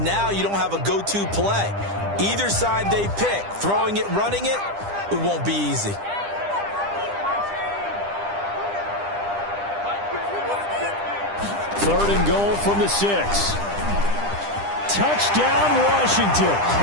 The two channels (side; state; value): left; late; 10 ms